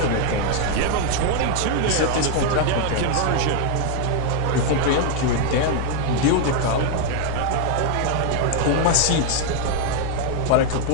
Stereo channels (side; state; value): both; different; correlation 0.00